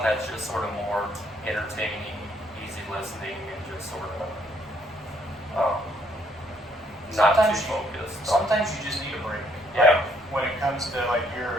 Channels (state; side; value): normal; both; correlation 0.69